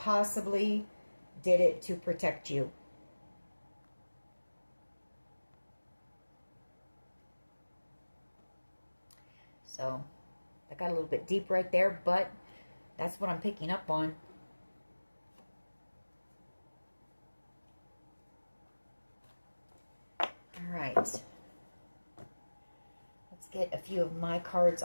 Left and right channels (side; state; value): both; inverted; correlation -1.00